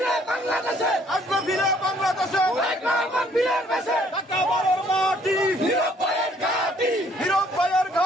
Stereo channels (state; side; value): normal; both; correlation 0.63